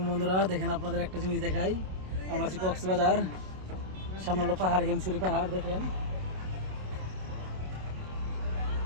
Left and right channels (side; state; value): left; late; 27 ms